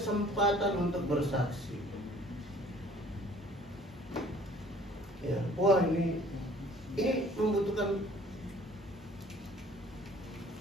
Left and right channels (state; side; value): normal; both; correlation 0.54